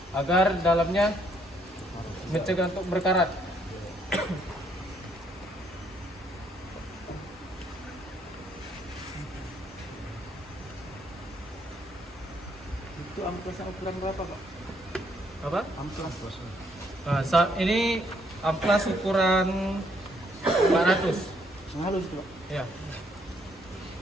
agar dalamnya mencegah untuk berkarat. Itu amplasnya ukuran berapa, Pak? Apa? Amplas. Nah, saat ini amplas ukuran 400. Halus, Pak. Ya.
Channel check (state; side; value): normal; both; correlation 0.69